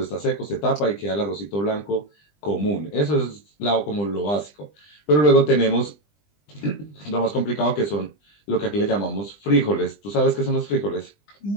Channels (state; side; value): late; right; 20 ms